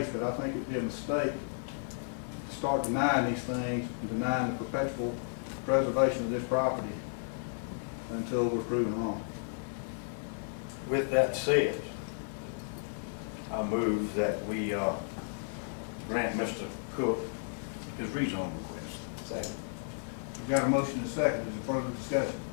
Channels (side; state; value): right; silent; digital silence